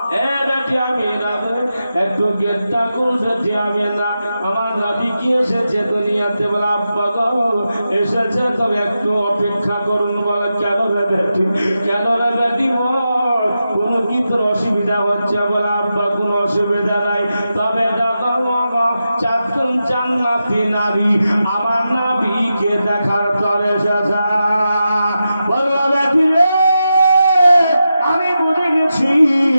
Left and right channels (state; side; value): inverted; both; correlation -0.89